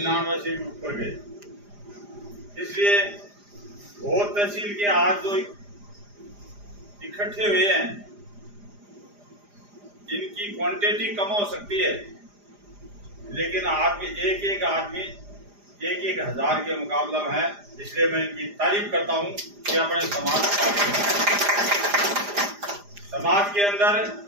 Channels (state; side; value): late; left; 4.9 ms